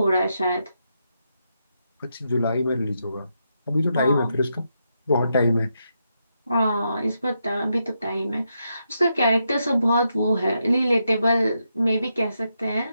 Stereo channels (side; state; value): both; inverted; correlation -0.82